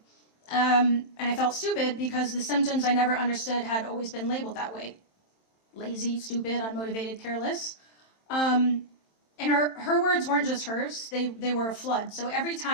And I felt stupid because the symptoms I never understood had always been labeled that way. Lazy, stupid, unmotivated, careless. And her words weren't just hers. They were a flood. So every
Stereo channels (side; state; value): right; late; 27 ms